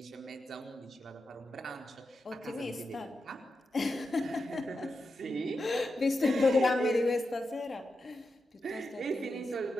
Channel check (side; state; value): both; normal; correlation 0.88